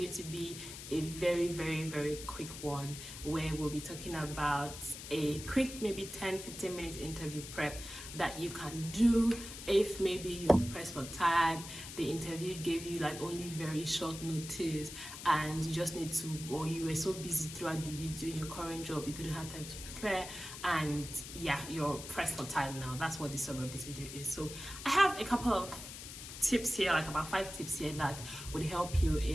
to be a very quick one where we'll be talking about a quick maybe 10-15 minutes interview prep that you can do if maybe you're pressed for time, the interview gave you like only very short notice and you just need to, or you were so busy throughout the week doing your current job you couldn't have time to prepare, and yeah, you're pressed for time now. That's what the summary of this video is. So I have a couple of tips here, like about 5 tips here that would help you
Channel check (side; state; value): left; noise; hiss, 11 dB below the sound